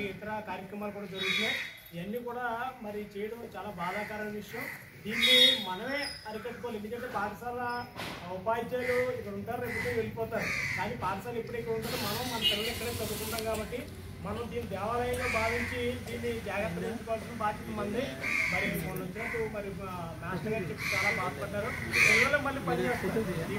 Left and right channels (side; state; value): both; identical; correlation 1.00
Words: ఇతర కార్యక్రమాలు కూడా జరుగుతున్నాయి. ఇవన్నీ కూడా మరి చేయడం చాలా బాధాకరమైన విషయం. దీన్ని మనమే అరికట్టుకోవాలి. ఎందుకంటే పాఠశాల ఉపాధ్యాయులు ఇక్కడ ఉంటారు, రేపు వెళ్ళిపోతారు. కానీ పాఠశాల ఎప్పుడు ఇక్కడ ఉంటుందో మనం మన పిల్లలు ఇక్కడే చదువుకుంటాం కాబట్టి మనం దీన్ని దేవాలయంగా భావించి దీన్ని జాగ్రత్తగా ఉంచుకోవాల్సిన బాధ్యత మంది. మరి మొన్న వచ్చినట్టు మరి మాస్టర్ గారు చెప్పి చాలా బాధపడ్డారు. పిల్లలు మళ్ళీ పనిచేస్తారు.